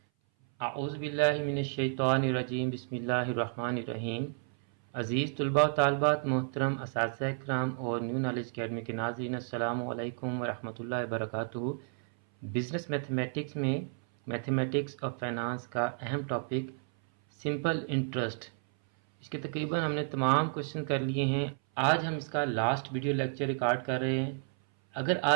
आऊज़ु बिल्लाहि मिनश शैतानिर रजीम, बिस्मिल्लाहिर रहमानिर रहीम। अज़ीज़ तलबा व तालिबात, मोहतरम असातिज़ा इकराम और न्यू नॉलेज अकेडमी के नाज़रीन, अस्सलामु अलैकुम व रहमतुल्लाहि व बरकातुहू। बिज़नेस मैथमेटिक्स में मैथमेटिक्स और फाइनेंस का अहम टॉपिक सिंपल इंटरेस्ट, इसके तकरीबन हमने तमाम क्वेश्चन कर लिए हैं। आज हम इसका लास्ट वीडियो लेक्चर रिकॉर्ड कर रहे हैं। अगर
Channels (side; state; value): left; silent; 57 dB below the other